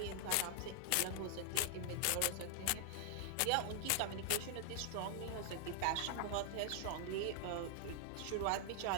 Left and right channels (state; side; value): different; both; correlation 0.00